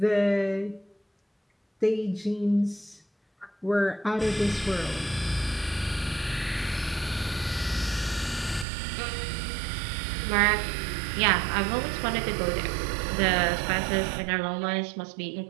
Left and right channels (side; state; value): left; drops out; at 8.7 s